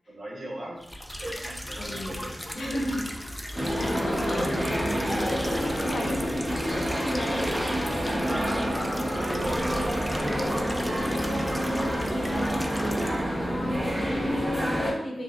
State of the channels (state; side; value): normal; both; correlation 0.94